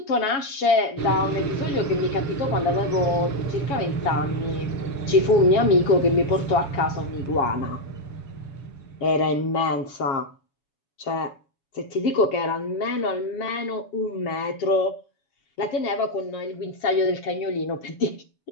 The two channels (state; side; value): late; right; 7.1 ms